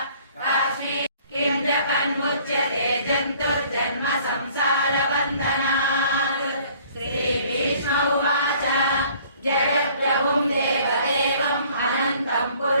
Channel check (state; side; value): inverted; both; correlation -0.56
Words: काश्मीर किं जपन्मुच्यते जन्तुर्जन्म संसारबन्धनात् श्रीभीष्म उवाच जगत्प्रभुं देवदेवम् अनन्तं